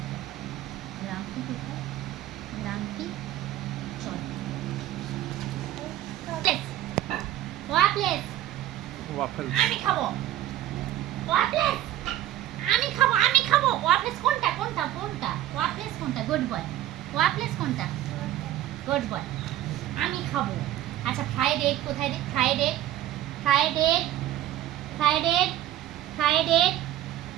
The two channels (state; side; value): quieter; left; 13.2 dB